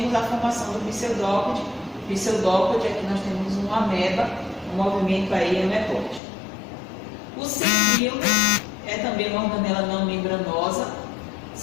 a formação do pseudópode. Pseudópode, aqui nós temos uma ameba, um movimento aí amebóide.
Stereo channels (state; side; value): drops out; right; at 6.2 s